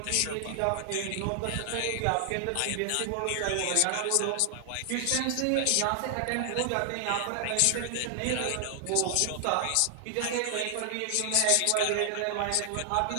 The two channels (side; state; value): both; different; correlation 0.00